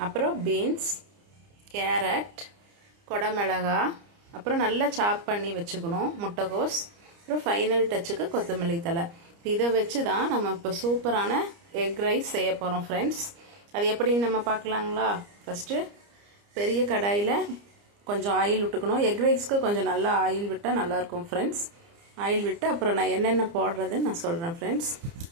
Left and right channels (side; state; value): left; late; 30 ms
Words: அப்புறம் பீன்ஸ், கேரட், கொடமிளகா, அப்புறம் நல்லா சாப் பண்ணி வச்சுக்கணும் முட்டைகோஸ், அப்புறம் ஃபைனல் டச்சுக்கு கொத்தமல்லி தழை. இதை வச்சு தான் நம்ம இப்போ சூப்பரான எக் ரைஸ் செய்ய போகிறோம் ஃப்ரெண்ட்ஸ். அது எப்படின்னு நம்ம பார்க்கலாங்களா? ஃபஸ்ட்டு பெரிய கடாயில் கொஞ்சம் ஆயில் விட்டுக்கணும். எக் ரைஸ்க்கு கொஞ்சம் நல்லா ஆயில் விட்டால் நல்லாயிருக்கும் ஃப்ரெண்ட்ஸ். ஆயில் விட்டு அப்புறம் நான் என்னென்ன போடுறதுன்னு நான் சொல்கிறேன் ஃப்ரெண்ட்ஸ்.